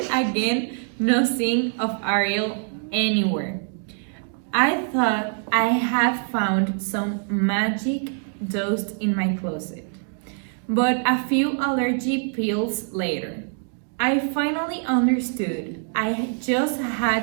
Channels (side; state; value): left; silent; 57 dB below the other